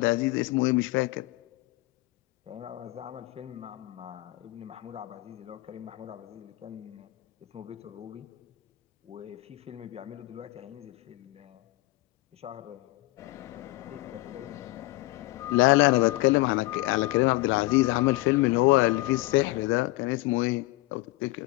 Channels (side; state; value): right; quieter; 20.3 dB